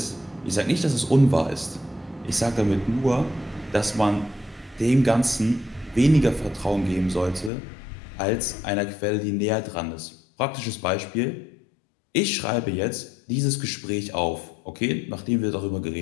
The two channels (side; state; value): right; drops out; at 7.5 s